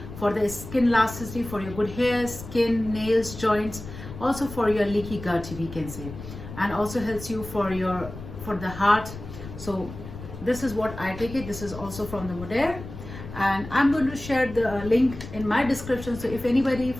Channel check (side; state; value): left; noise; rumble, 12 dB below the sound